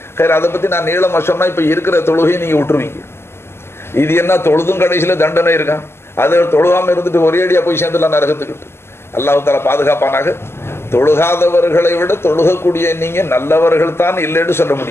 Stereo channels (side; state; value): right; late; 0.12 ms